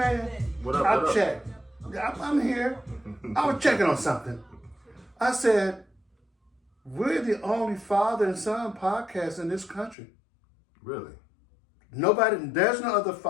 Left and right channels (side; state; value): right; drops out; at 10.0 s